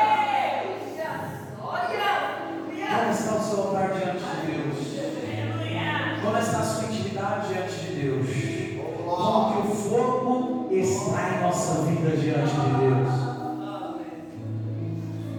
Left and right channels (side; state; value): both; identical; correlation 1.00